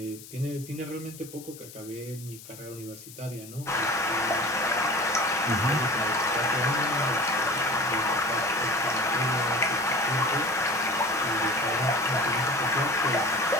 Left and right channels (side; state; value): left; noise; hiss, 17 dB below the sound